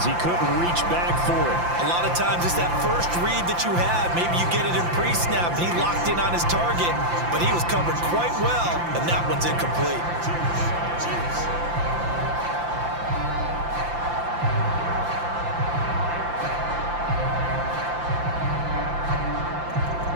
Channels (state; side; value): late; left; 5.8 ms